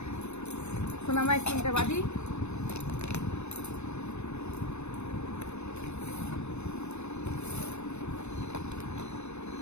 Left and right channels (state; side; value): late; right; 0.81 ms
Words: সোনা মায়ের চুলটা বাঁধি।